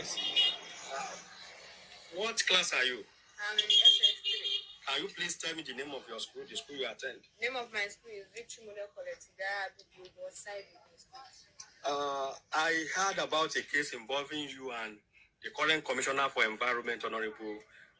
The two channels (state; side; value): identical; both; correlation 1.00